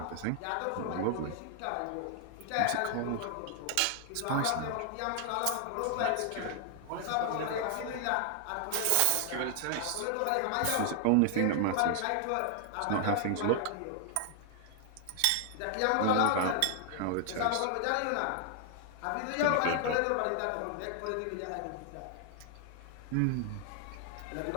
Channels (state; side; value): different; both; correlation 0.00